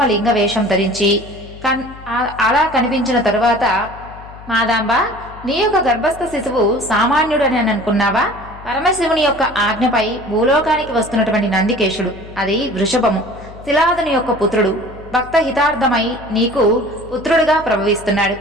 లింగ వేషం ధరించి అలా కనిపించిన తరువాత, మాదాంబ నీ యొక్క గర్భస్థ శిశువు సామాన్యుడని అనుకున్నావా? పరమశివుని యొక్క ఆజ్ఞపై భూలోకానికి వస్తున్నటువంటి నందికేశుడు, అది వృషభము, శిలాదుని యొక్క పుత్రుడు, భక్త హితార్థమై నీకు పుత్రుడుగా ప్రభవిస్తున్నాడు.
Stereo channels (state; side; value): noise; left; hum, 17 dB below the sound